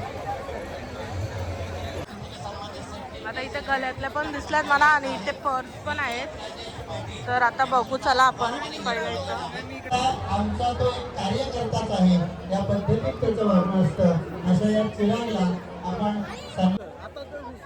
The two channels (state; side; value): identical; both; correlation 1.00